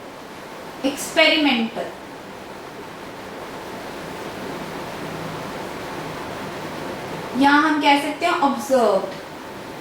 एक्सपेरिमेंटल। यहां हम कह सकते हैं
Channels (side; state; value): both; identical; correlation 1.00